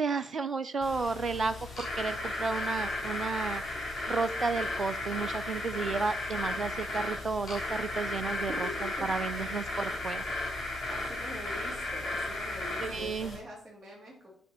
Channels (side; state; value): both; normal; correlation 0.77